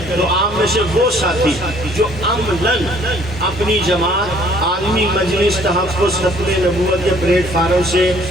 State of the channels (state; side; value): normal; both; correlation 0.59